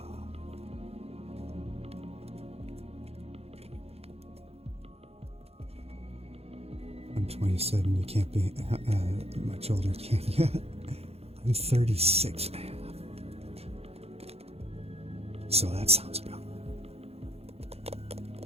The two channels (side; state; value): left; late; 0.29 ms